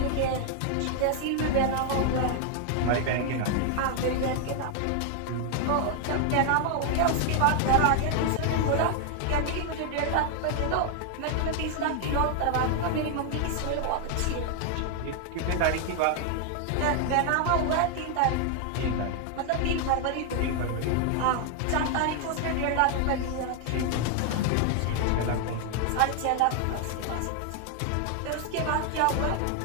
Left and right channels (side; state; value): both; different; correlation 0.00